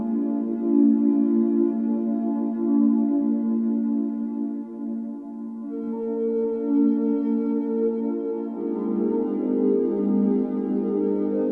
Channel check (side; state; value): both; identical; correlation 1.00